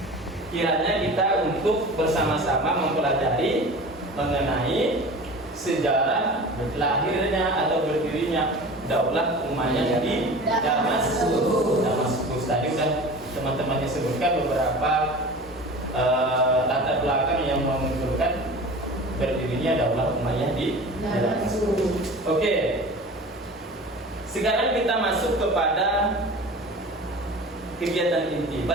kiranya kita untuk bersama-sama mempelajari mengenai sejarah lahirnya atau berdirinya Daulah Umayyah di Damaskus. Tadi sudah teman-temannya sebutkan beberapa latar belakang yang menunjukkan berdirinya Daulah Umayyah di Damaskus. Oke. Sekarang kita masuk kepada kegiatan inti.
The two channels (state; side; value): normal; both; correlation 0.37